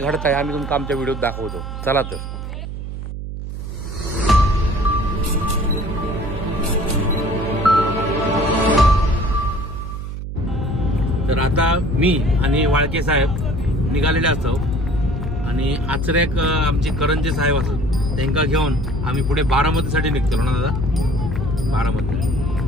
घडत आहे आम्ही तुमका आमच्या व्हिडिओत दाखवतो. चला तर आता मी आणि वाळके साहेब निघालेले असतो आणि आचरेक आमचे करंजे साहेब असत त्यांना घेऊन आम्ही पुढे बारामतीसाठी निघतो ना दादा. बारामती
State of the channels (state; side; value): noise; right; hum, 7 dB below the sound